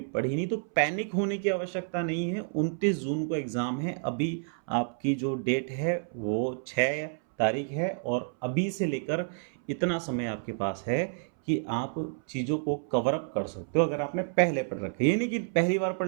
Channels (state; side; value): silent; left; 58 dB below the other